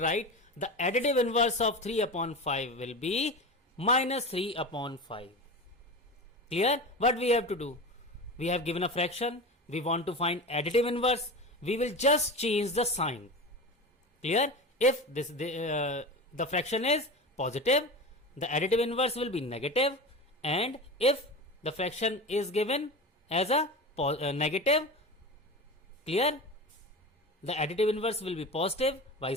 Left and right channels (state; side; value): normal; both; correlation 0.27